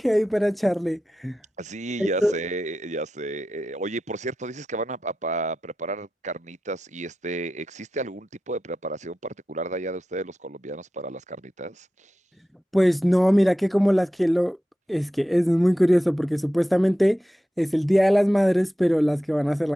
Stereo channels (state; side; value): normal; both; correlation 0.92